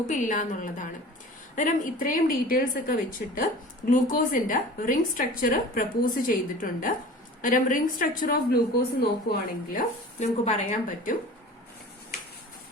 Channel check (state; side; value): normal; both; correlation 0.40